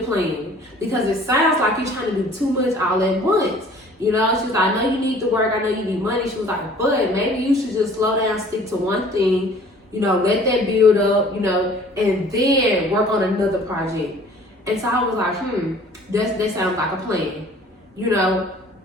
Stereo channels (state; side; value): normal; both; correlation 0.51